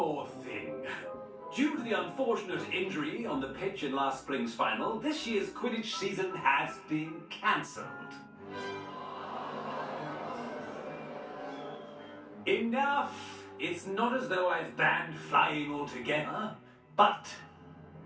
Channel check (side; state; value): both; identical; correlation 1.00